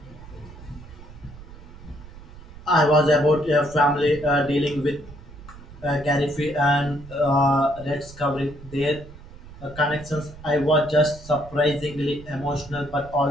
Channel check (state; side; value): noise; right; rumble, 17 dB below the sound